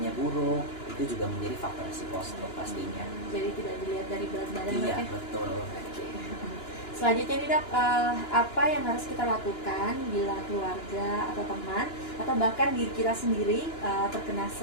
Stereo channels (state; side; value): late; right; 2.9 ms